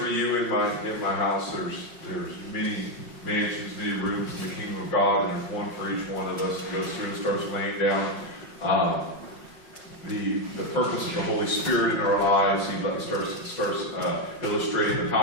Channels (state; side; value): late; right; 5.5 ms